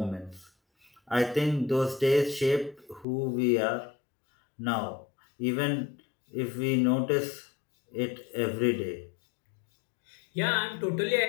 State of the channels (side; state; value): right; drops out; at 3.1 s